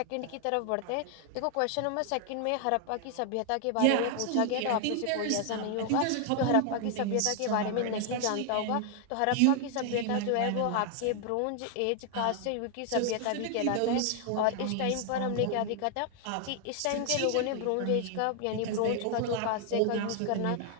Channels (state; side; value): different; both; correlation 0.00